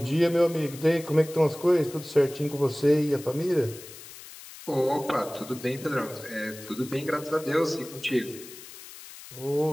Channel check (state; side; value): noise; left; hiss, 16 dB below the sound